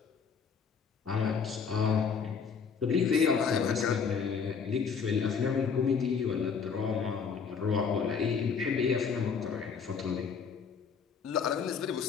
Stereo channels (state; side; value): quieter; right; 6.1 dB